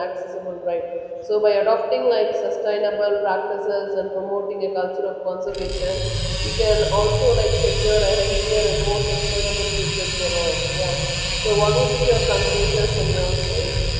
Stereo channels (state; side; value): identical; both; correlation 1.00